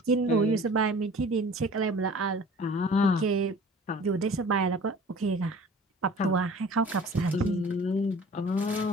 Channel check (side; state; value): both; normal; correlation 0.46